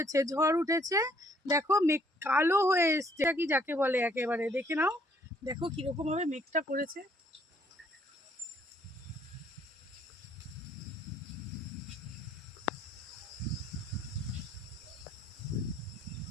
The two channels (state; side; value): normal; both; correlation 0.64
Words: ঝড় উঠেছে, দেখো মেঘ কালো হয়ে এসছে, কি যাকে বলে একেবারে দেখে নাও। দেখো কিরকম ভাবে মেঘটা করেছে।